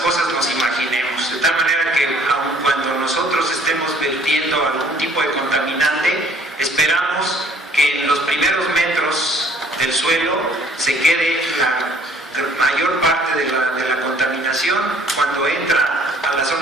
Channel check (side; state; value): both; normal; correlation 0.57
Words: nos imaginemos. De tal manera que aun cuando nosotros estemos vertiendo algún tipo de contaminante, esperamos que en los primeros metros del suelo se quede la mayor parte de la contaminación. Cuando entra a la